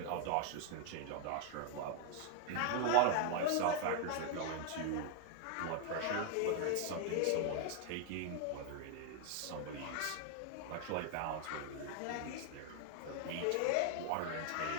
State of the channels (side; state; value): both; different; correlation 0.00